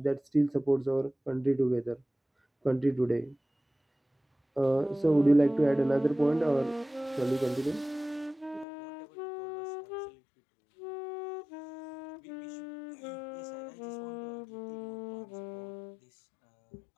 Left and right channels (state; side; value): drops out; right; at 8.7 s